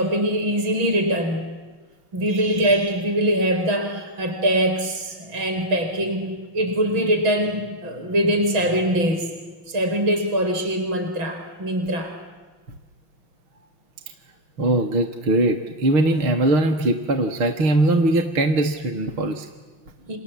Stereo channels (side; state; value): left; late; 6.2 ms